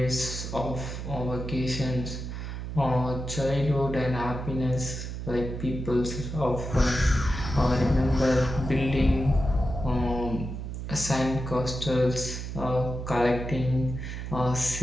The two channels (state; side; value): noise; right; hum, 6 dB below the sound